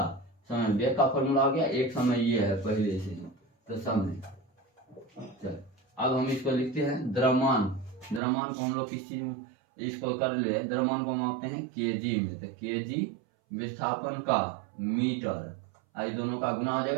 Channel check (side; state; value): left; drops out; at 8.2 s